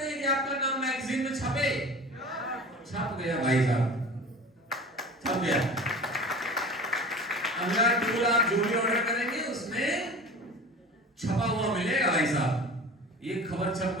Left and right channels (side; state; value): both; normal; correlation 0.37